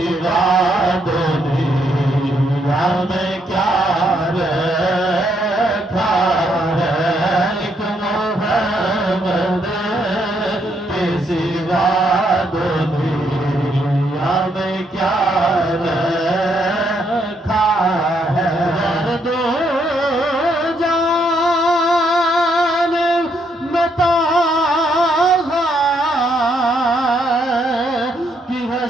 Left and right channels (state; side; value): normal; both; correlation 0.74